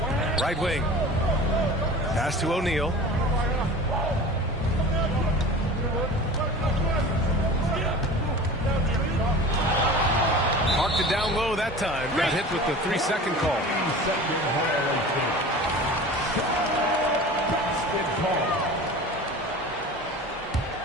Right wing. Pass to O'Neal. Marked it down low that time. Got hit with the 3-second call.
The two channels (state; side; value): normal; both; correlation 0.38